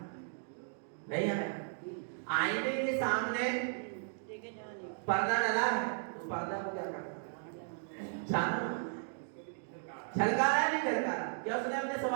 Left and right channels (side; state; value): left; silent; digital silence